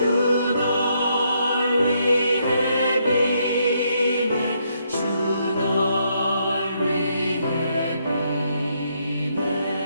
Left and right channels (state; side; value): inverted; both; correlation -0.75